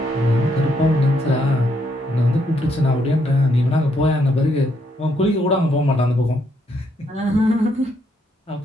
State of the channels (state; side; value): normal; both; correlation 0.74